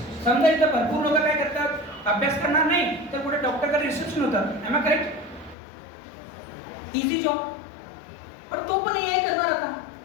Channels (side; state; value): right; drops out; at 5.6 s